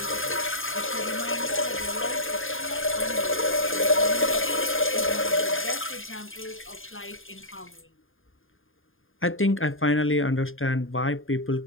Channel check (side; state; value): right; late; 0.59 ms